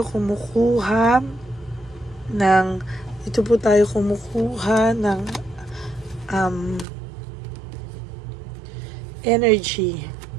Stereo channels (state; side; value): drops out; left; at 6.9 s